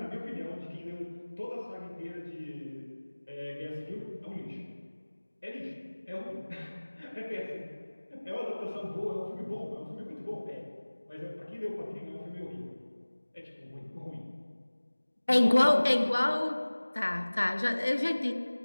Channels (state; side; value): inverted; both; correlation -1.00